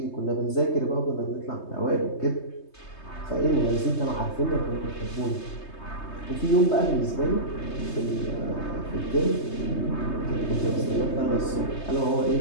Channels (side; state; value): right; late; 3.2 ms